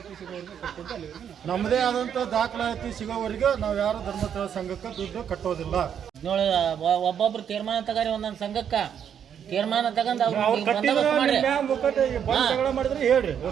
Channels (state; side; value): quieter; left; 8.5 dB